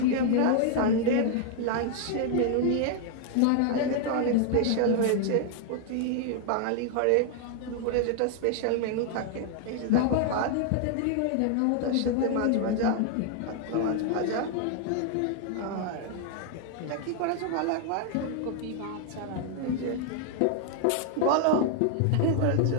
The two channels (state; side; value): different; both; correlation 0.00